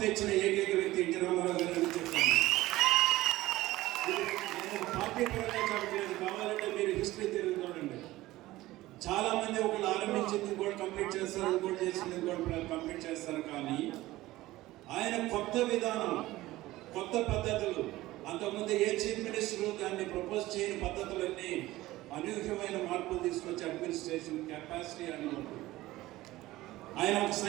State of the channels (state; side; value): quieter; left; 17.3 dB